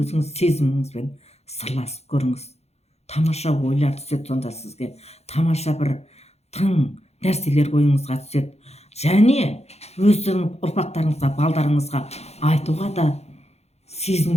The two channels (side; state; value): right; late; 0.31 ms